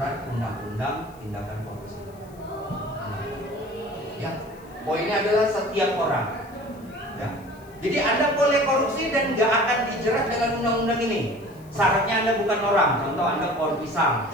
undang-undang tindakan korupsi. Ya, poinnya adalah setiap orang. Ya. Jadi Anda boleh korupsi dan nggak akan dijerat dengan undang-undang ini. Syaratnya Anda bukan orang, contoh Anda pohon pisang.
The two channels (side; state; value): left; noise; hiss, 28 dB below the sound